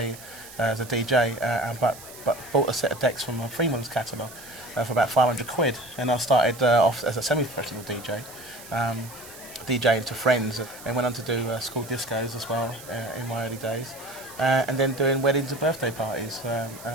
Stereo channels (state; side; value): noise; right; hiss, 17 dB below the sound